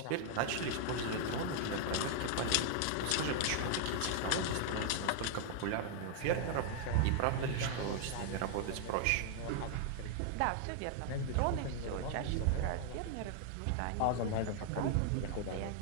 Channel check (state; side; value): different; both; correlation 0.00